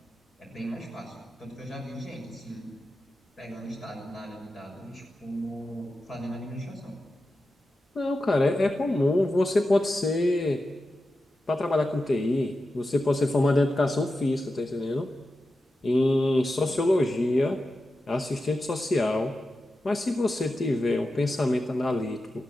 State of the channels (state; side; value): normal; both; correlation 0.91